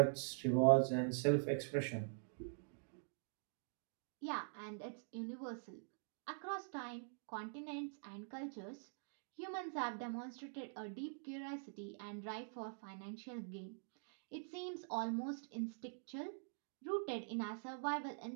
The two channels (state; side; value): silent; left; digital silence